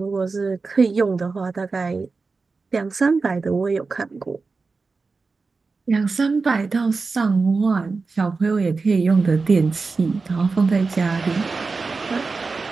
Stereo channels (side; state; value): left; quieter; 4.2 dB